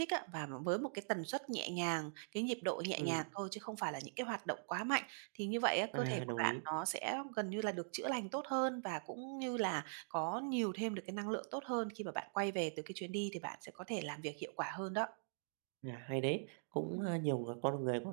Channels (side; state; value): left; silent; digital silence